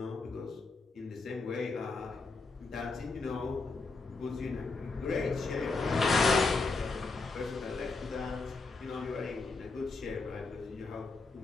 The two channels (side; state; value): right; quieter; 3.9 dB